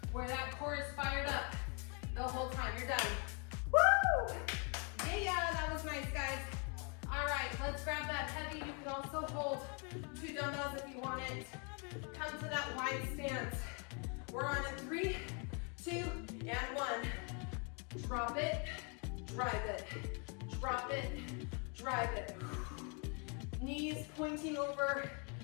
where that core is fired up the whole time. You're done. Woo! Yeah, that was nice, guys. All right, let's grab that heavy. You can also hold 2 dumbbells if you want it. Come to that wide stance. We're on a 3, 2, and 1. Drop it, drive it. Drop it, drive it. Knees pointing over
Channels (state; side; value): quieter; right; 36.2 dB